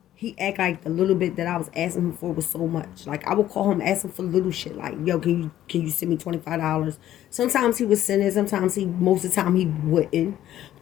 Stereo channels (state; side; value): quieter; right; 12.6 dB